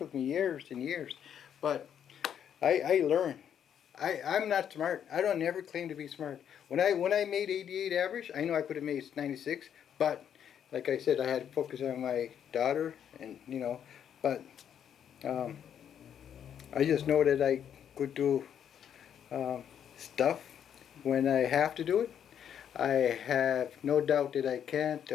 me years and years, but I learned. I'm not smart. I don't ever claim to be smart. When I made 88 average, I know I could have made 96, but like I said, I had to focus on my daughter, and but I just know that I could do stuff when I have to do it. I have no doubt that I can't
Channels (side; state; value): right; quieter; 8.9 dB